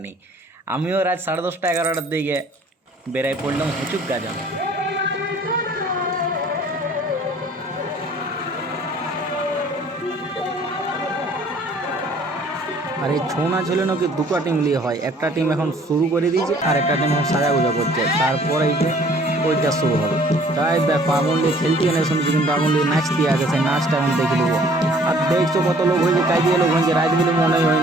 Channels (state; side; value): normal; both; correlation 0.56